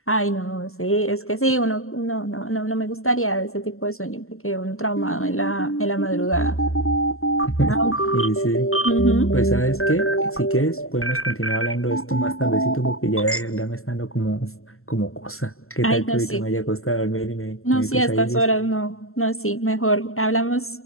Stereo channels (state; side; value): late; right; 0.62 ms